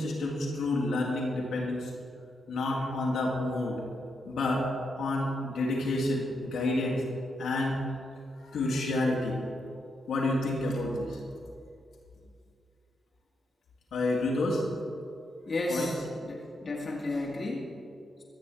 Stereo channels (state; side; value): normal; both; correlation 0.81